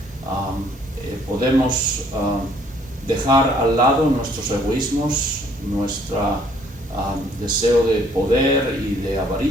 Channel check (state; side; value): normal; both; correlation 0.62